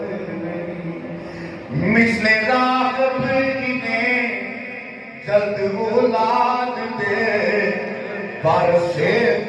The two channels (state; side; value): identical; both; correlation 1.00